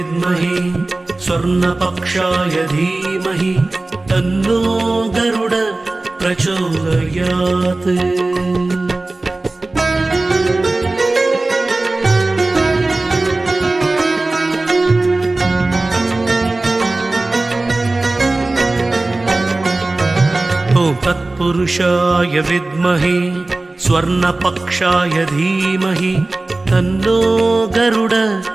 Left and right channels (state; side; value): quieter; left; 3.1 dB